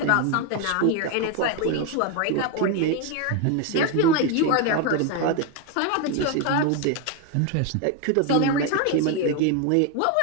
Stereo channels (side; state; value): both; different; correlation 0.01